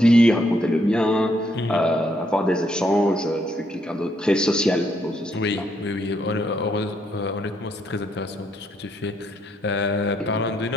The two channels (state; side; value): normal; both; correlation 0.74